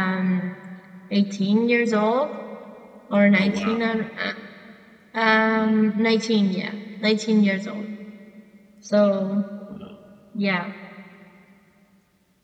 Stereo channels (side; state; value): both; identical; correlation 1.00